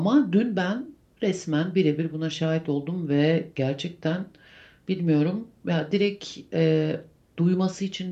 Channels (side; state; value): both; identical; correlation 1.00